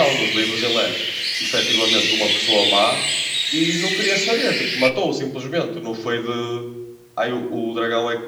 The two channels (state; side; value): identical; both; correlation 1.00